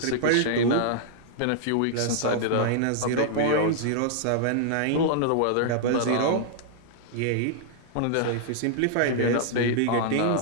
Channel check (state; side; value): different; both; correlation -0.01